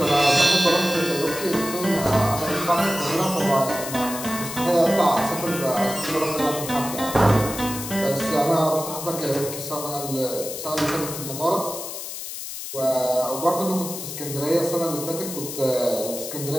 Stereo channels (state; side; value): noise; left; hiss, 8 dB below the sound